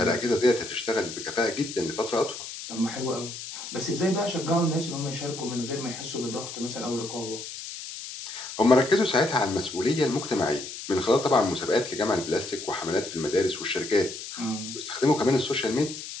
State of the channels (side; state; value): left; noise; hiss, 10 dB below the sound